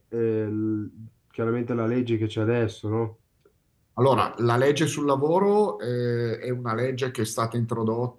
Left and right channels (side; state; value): both; identical; correlation 1.00